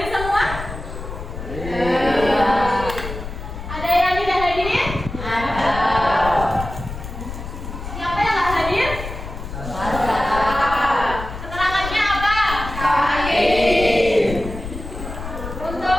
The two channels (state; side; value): noise; left; rumble, 9 dB below the sound